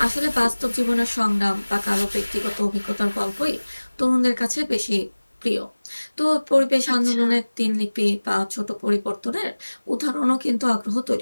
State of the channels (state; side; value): inverted; both; correlation -1.00